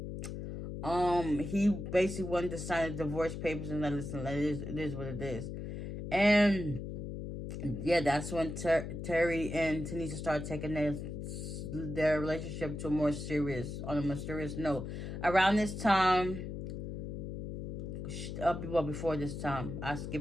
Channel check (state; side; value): noise; left; hum, 6 dB below the sound